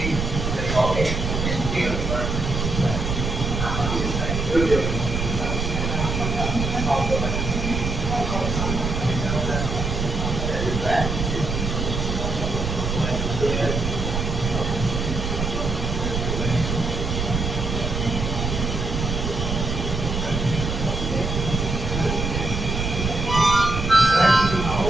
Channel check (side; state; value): right; noise; rumble, 2 dB below the sound